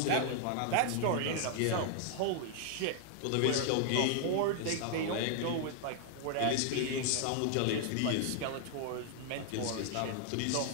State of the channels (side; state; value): both; different; correlation -0.01